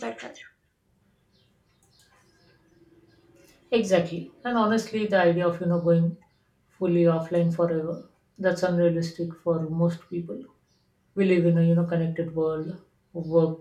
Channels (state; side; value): identical; both; correlation 1.00